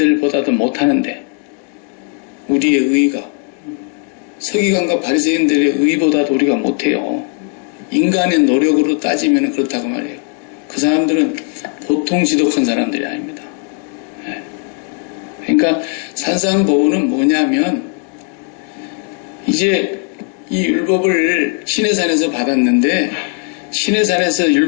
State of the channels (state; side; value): quieter; right; 38.2 dB